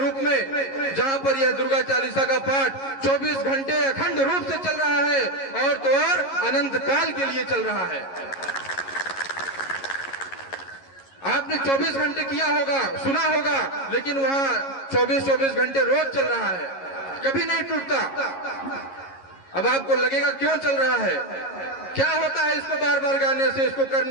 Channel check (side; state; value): right; late; 11 ms